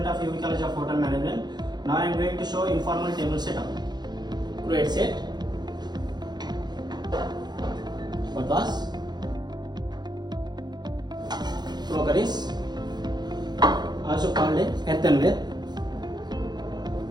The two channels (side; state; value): left; late; 0.21 ms